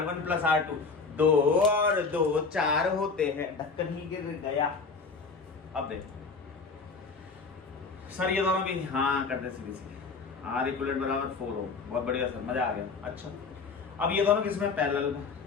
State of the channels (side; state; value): right; quieter; 4.6 dB